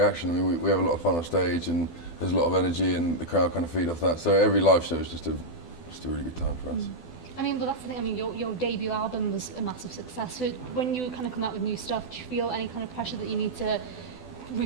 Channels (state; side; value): late; right; 12 ms